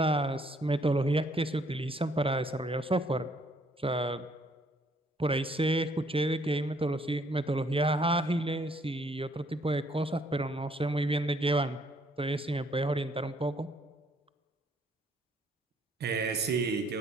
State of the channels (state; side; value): normal; both; correlation 0.65